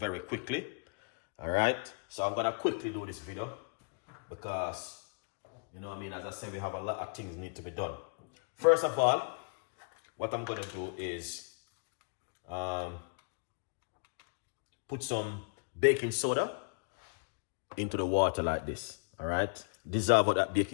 quickly. All right, so I'm going to quickly do this video because, you know what I mean, as I said, we have a lot of things need to be done. First of all, what I'm going to do is put some baking soda into the water like this. All right, dissolve that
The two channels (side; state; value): right; quieter; 38.7 dB